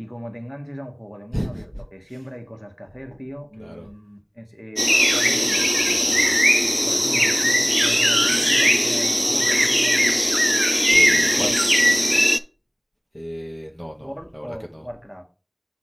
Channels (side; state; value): both; identical; correlation 1.00